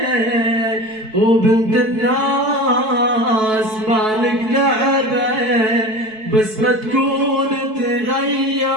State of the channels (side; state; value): left; late; 4.6 ms